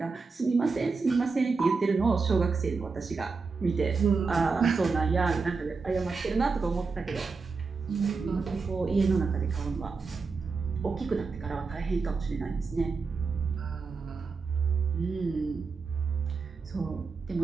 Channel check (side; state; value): left; quieter; 4.6 dB